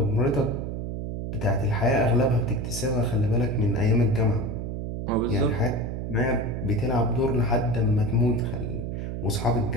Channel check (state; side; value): noise; right; hum, 4 dB below the sound